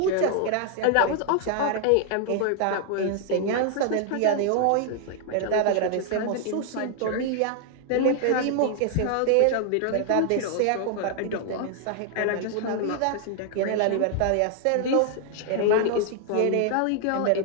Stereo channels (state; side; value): different; both; correlation 0.00